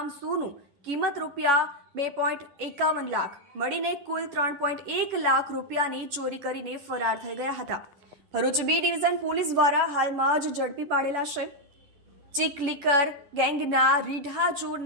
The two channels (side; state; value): left; late; 11 ms